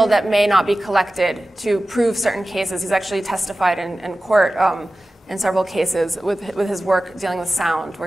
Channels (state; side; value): normal; both; correlation 0.96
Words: that may not be collected to prove certain cases. He's actually testified in court in several cases with his work dealing with sound,